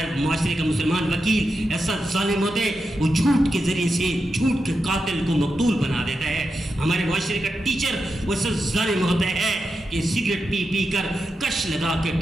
معاشرے کا مسلمان وکیل ایسا ظالم ہوتا ہے، وہ جھوٹ کے ذریعے سے جھوٹ کے قاتل کو مقتول بنا دیتا ہے. ہمارے معاشرے کا ٹیچر وہ ایسا ظالم ہوتا ہے کہ سگریٹ پی کر کش لگا کے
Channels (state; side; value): normal; both; correlation 0.88